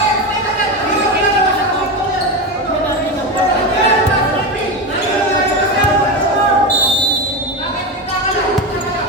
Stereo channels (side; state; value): both; normal; correlation 0.18